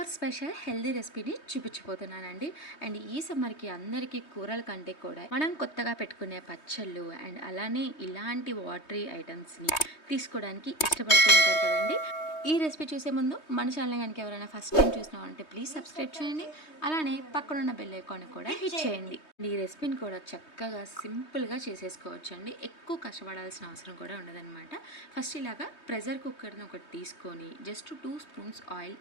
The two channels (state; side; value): late; right; 3.2 ms